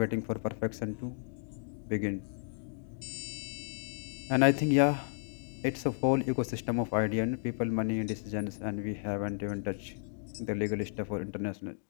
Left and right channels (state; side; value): silent; right; digital silence